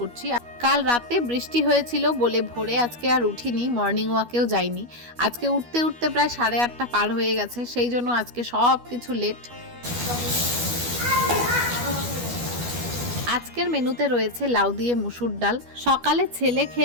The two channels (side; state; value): left; late; 12 ms